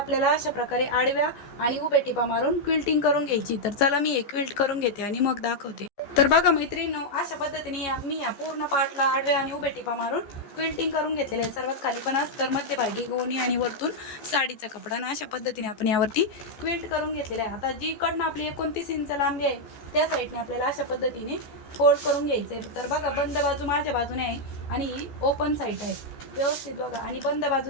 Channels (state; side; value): late; right; 14 ms